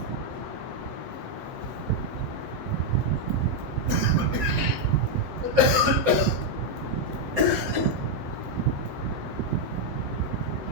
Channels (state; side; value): late; left; 7.9 ms